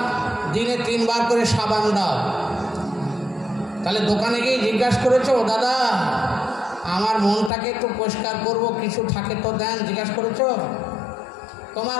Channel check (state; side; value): drops out; right; at 7.5 s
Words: দিনে 3 বার করে সাবান দাও। তাহলে দোকানে গিয়ে জিজ্ঞাসা করেছো, দাদা আমার মনটাকে একটু পরিষ্কার করব, কিছু থাকে তো দেন, জিজ্ঞাসা করেছো? তোমার